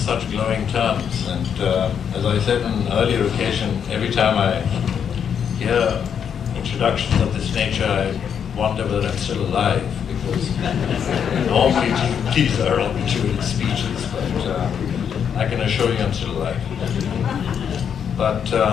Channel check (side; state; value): right; quieter; 7.8 dB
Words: glowing terms. And as I said on an earlier occasion, every time I hear introductions of this nature, I wonder whether I'm still alive, because normally these are obituary speeches, but I can assure you I'm still alive. But